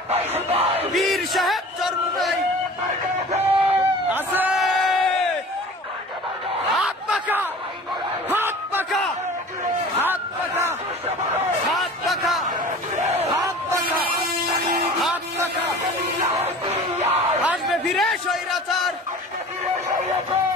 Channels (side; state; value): both; normal; correlation 0.41